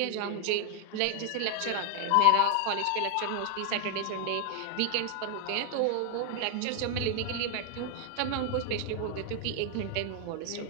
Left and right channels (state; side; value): different; both; correlation 0.00